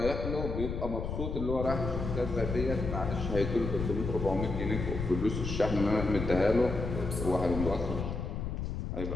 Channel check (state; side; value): noise; left; rumble, 4 dB below the sound